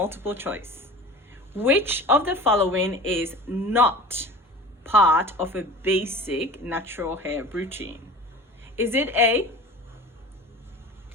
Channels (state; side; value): normal; both; correlation 0.38